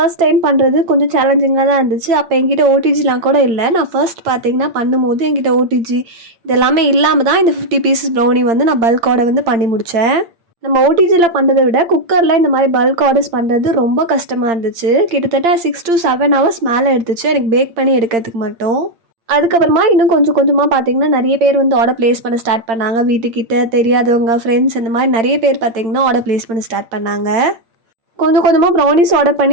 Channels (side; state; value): left; late; 8.8 ms